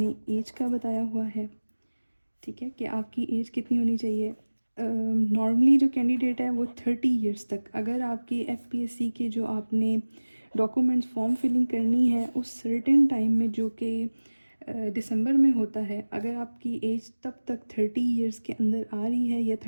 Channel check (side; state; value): both; inverted; correlation -1.00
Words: एज का बताया हुआ है, ठीक है, कि आपकी एज कितनी होनी चाहिए। नॉर्मली जो कैंडिडेट है वो 30 इयर्स तक, अगर आपकी FPSC के जो आपने डॉक्यूमेंट्स फॉर्म फिलिंग करनी है उस सर्टेन टाइम में जो कि दिसंबर में होता है, अगर आपकी एज तब तक 30 इयर्स के अंदर आ रही है या